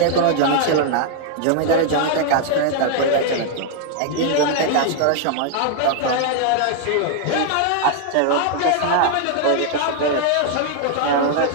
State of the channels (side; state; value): both; different; correlation 0.00